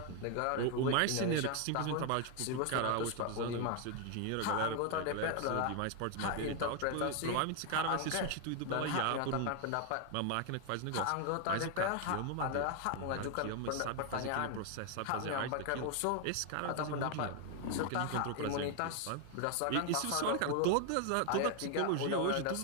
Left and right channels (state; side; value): different; both; correlation 0.01